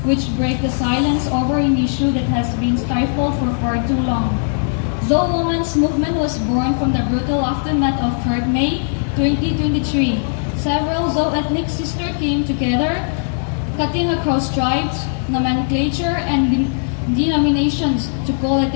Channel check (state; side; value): silent; right; digital silence